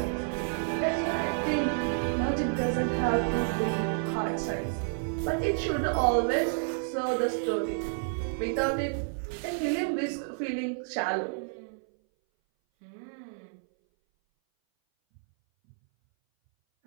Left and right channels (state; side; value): silent; left; 58 dB below the other